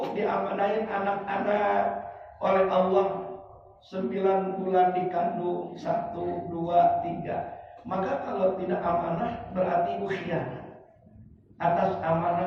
diamanahin anak-anak oleh Allah 9 bulan dikandung, 1, 2, 3. Maka kalau tidak amanah berarti ibu khianat atas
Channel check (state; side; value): identical; both; correlation 1.00